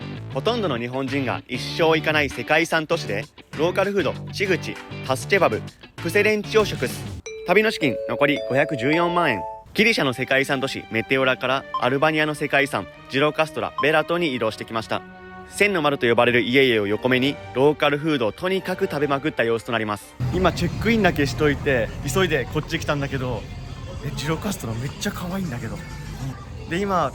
ほとんどの日本人が一生行かない世界遺産都市で、ローカルフード、チグチ、タスチェバブ、プセレンチを食す。旅の資金、残り514万円。ギリシャの世界遺産都市、メテオラからアルバニアの世界遺産、ジロカストラ、ベラトに移動してきました。千の丸と呼ばれる家々を横目に、ローカルフードをとにかく食べまくった様子となります。今、チェックインだけしといて、急いでこっち来たんだけど、ジロカストラめっちゃ可愛いんだけど。で、今、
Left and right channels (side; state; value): both; identical; correlation 1.00